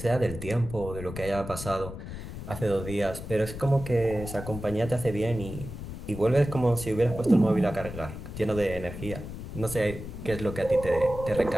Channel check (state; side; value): noise; left; rumble, 9 dB below the sound